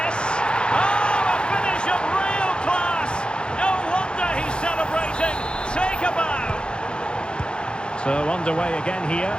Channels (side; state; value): right; late; 0.052 ms